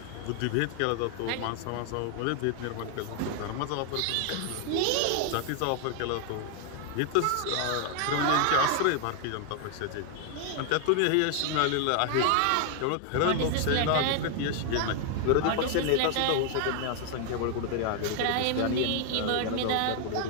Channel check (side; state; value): both; different; correlation 0.00